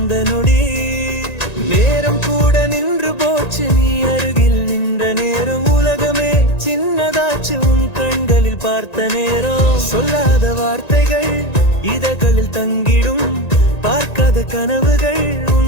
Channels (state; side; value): late; right; 1.9 ms